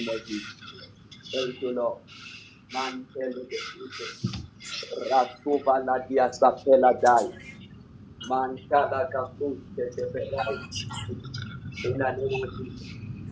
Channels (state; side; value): identical; both; correlation 1.00